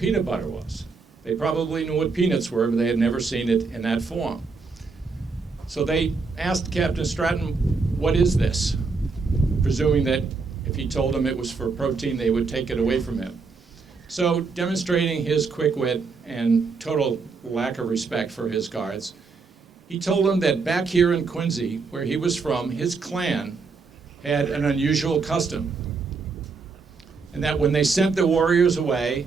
butter was. They probably knew what peanuts were, but they had never seen it in that form. So they asked Captain Stratton, what is this? Presuming that if he told them it was for protein, they would take it away from him. So demonstrating his quick wit and total lack of respect for his guards, he told them that back here in Quincy, where he was from, his clan had an unusual custom. And that when they sent the warriors away,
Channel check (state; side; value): quieter; left; 4.5 dB